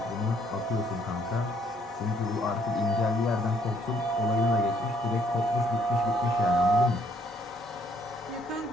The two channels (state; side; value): normal; both; correlation 0.66